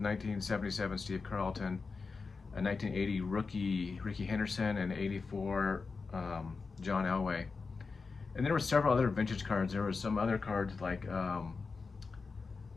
1977 Steve Carlton, a 1980 rookie Ricky Henderson, and 84 John Elway. And there were several other vintage cards. There were some other cards like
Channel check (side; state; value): right; quieter; 4.5 dB